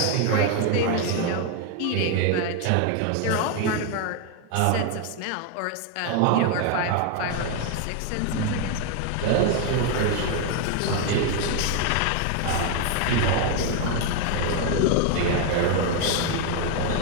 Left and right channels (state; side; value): different; both; correlation 0.01